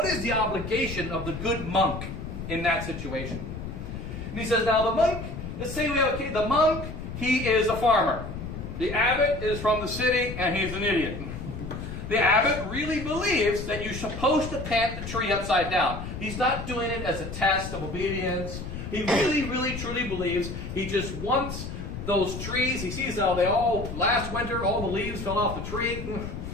is the obligation of the good monk in that situation? And he says, now the monk, let's say we have the monk, he is a farmer. The abbot is from the city and he's an idiot. The abbot really believes that you're supposed to plant the tree upside down. He's not doing it as a test of obedience. He really, really, truly believes he just wants those trees. He sees how they all, last winter, all the leaves fell off the tree.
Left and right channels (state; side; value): noise; left; rumble, 8 dB below the sound